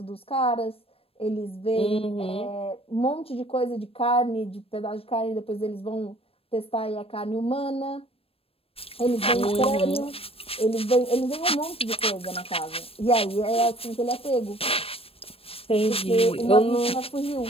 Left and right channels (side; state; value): right; late; 0.28 ms